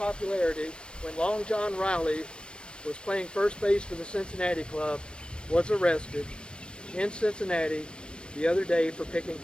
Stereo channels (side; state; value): right; late; 0.056 ms